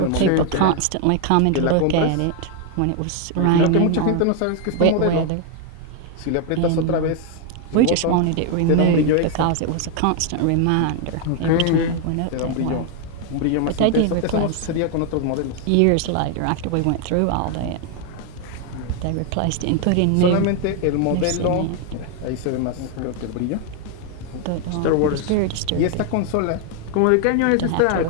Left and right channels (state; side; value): different; both; correlation 0.01